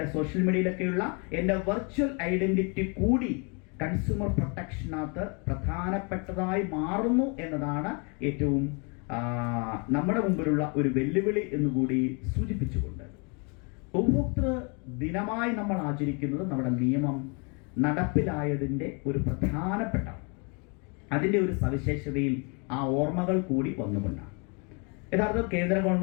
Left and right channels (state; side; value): quieter; right; 34.1 dB